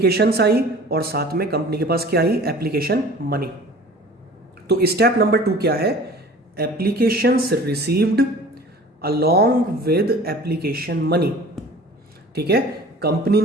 आई और साथ में कंपनी के पास क्या आई? Application money. तो स्टेप नंबर 2 क्या है? Applications received along with application money. ठीक है, कंपनी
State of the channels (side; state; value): both; normal; correlation 0.44